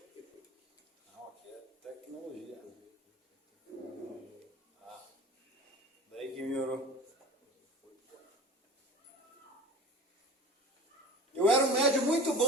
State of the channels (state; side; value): normal; both; correlation 0.37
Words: Não, aqui é tecnologia. Daí que melhorou. Eu era um médium muito